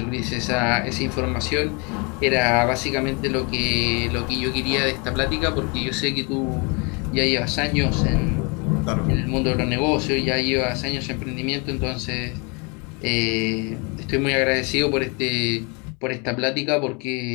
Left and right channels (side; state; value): right; quieter; 31.3 dB